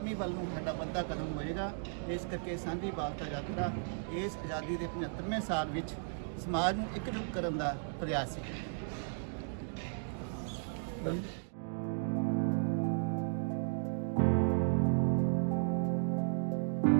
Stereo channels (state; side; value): silent; left; digital silence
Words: ਵੱਲ ਨੂੰ ਸਾਡਾ ਵੱਡਾ ਕਦਮ ਹੋਏਗਾ। ਇਸ ਕਰਕੇ ਸਾਂਝੀ ਵਾਲਤਾ ਯਾਤਰਾ ਇਸ ਆਜ਼ਾਦੀ ਦੇ 75ਵੇਂ ਸਾਲ ਵਿੱਚ ਸਮਾਜ ਨੂੰ ਇਕਜੁੱਟ ਕਰਨ ਦਾ ਪ੍ਰਯਾਸ ਹੈ।